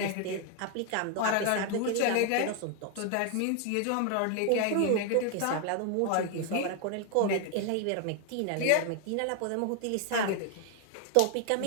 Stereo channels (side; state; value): both; different; correlation 0.00